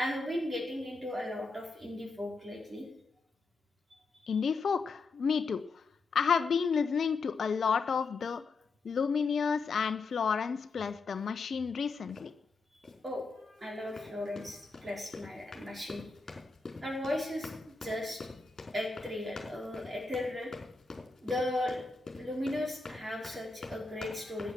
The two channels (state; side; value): quieter; right; 4.1 dB